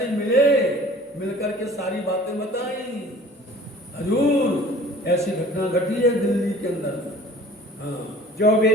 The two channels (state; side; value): normal; both; correlation 0.48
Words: मिले, मिलकर के सारी बातें बताई। हजूर ऐसी घटना घटी है दिल्ली के अंदर। हाँ, जो भी